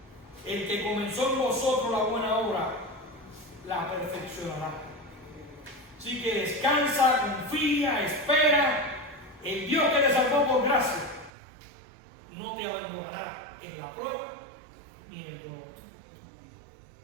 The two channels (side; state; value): left; drops out; at 11.3 s